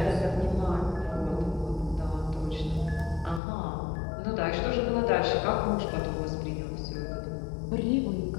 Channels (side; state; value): right; drops out; at 3.4 s